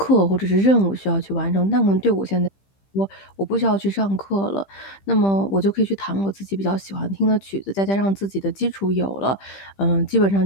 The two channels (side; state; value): right; late; 15 ms